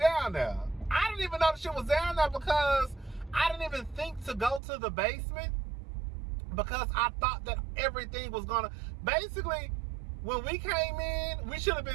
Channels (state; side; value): drops out; left; at 4.6 s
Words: there. I didn't even know the shit was down there because I didn't even think to go to the basement because I thought that everything was gonna, basically, when we came in, we should have